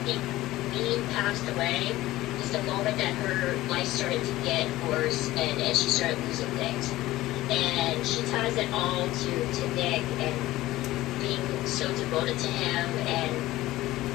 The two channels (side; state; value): right; quieter; 16.7 dB